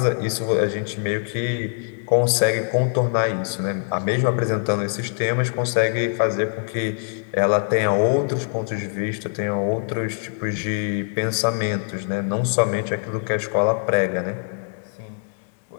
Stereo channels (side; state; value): right; silent; digital silence